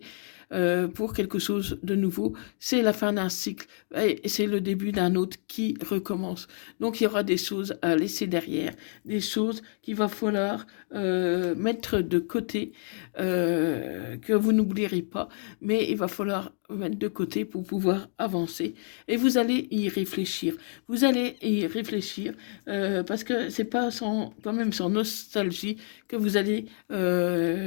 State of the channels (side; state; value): right; silent; 55 dB below the other